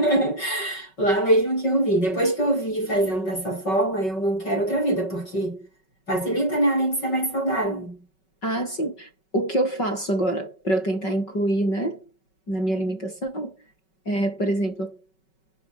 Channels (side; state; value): right; late; 5.3 ms